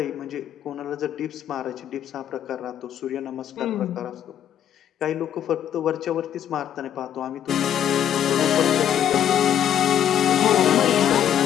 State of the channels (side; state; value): right; quieter; 10.1 dB